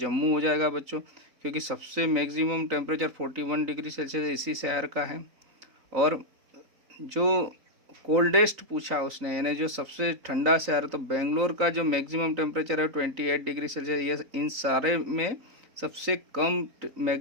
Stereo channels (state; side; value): late; left; 3.9 ms